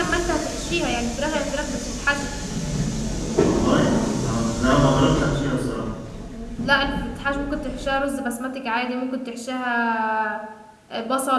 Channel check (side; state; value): both; identical; correlation 1.00